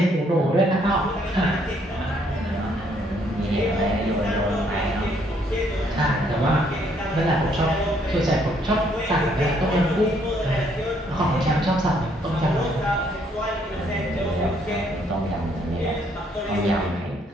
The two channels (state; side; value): normal; both; correlation 0.68